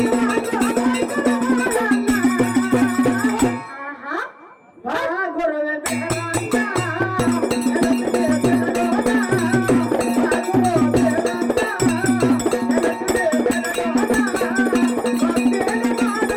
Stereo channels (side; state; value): both; identical; correlation 1.00